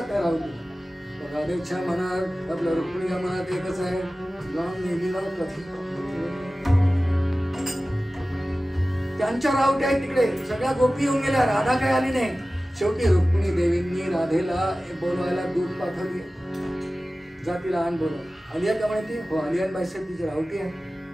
त्या राहुलीला. राधेच्या मनात आपल्या रुक्मिणीच्या मनात एकच आहे, जाऊन नेहमीला त्यांच्या रावट्या आहेत तिकडे. सगळ्या गोपी येऊन गेल्या, राधा काय आली नाही. शेवटी रुक्मिणी देवींनी राधेला बोलवायला दूध पाठवली. जा तिला आण बोलव. आलिया का म्हणते, हो आलियान बाईसाहेब तिची रावटी आहे,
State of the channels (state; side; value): normal; both; correlation 0.96